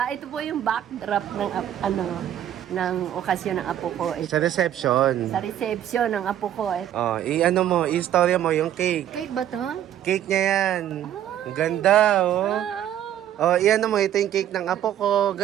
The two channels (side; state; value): left; quieter; 11.2 dB